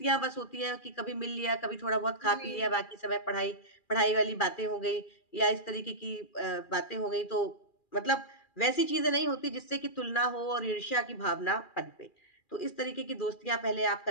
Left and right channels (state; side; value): late; right; 2.4 ms